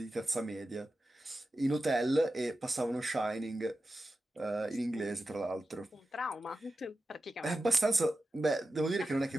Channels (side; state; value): both; normal; correlation 0.92